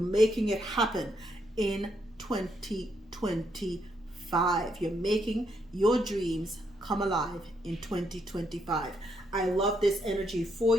making it happen in 2025. You're making your dreams come alive in 2025. I love this energy for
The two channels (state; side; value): normal; both; correlation 0.76